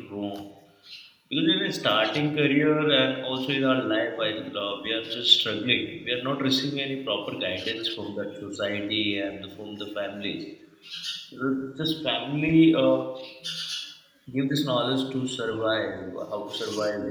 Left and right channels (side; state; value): both; identical; correlation 1.00